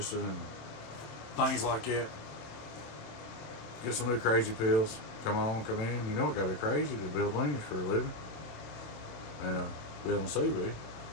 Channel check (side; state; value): right; late; 27 ms